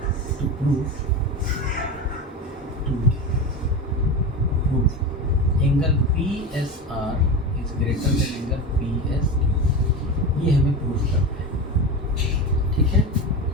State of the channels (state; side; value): normal; both; correlation 0.23